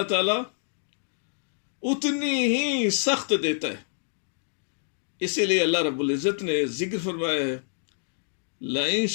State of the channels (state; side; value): silent; right; digital silence